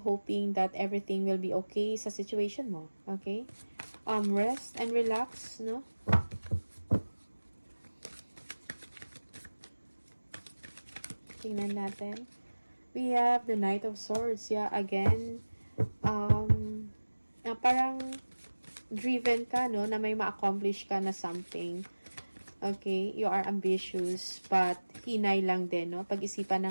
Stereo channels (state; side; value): inverted; both; correlation -1.00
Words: hoping that everything will be okay sa situation mo. Okay? Rest and relax, no? Tingnan natin. We have the Knight of Swords. Yeah, again, parang driven ka, no? Na may ma-accomplish ka na something. Okay? You are ambitious, but hinay lang din, no? Pag-isipan